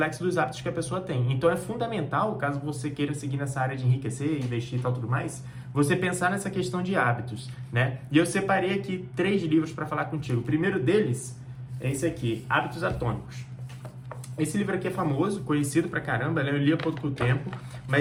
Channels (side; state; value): both; identical; correlation 1.00